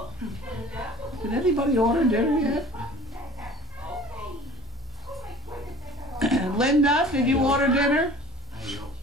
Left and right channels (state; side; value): normal; both; correlation 0.43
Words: Did anybody order dinner yet? Linda, did you order dinner? She